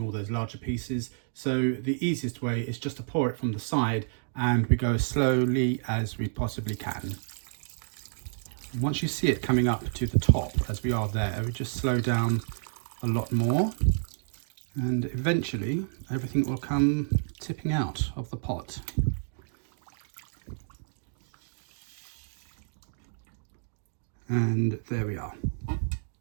all those larger pieces. So the easiest way is just to pour it from the side, and we go as slowly as we possibly can. Once you see it coming up to the top, as we are there, we just slow down a lot more, and eventually everything will come tipping out of the pot. And there we are.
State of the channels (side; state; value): left; silent; digital silence